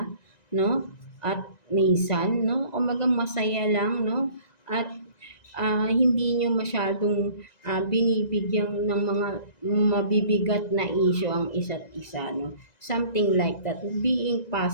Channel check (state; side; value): late; right; 1.9 ms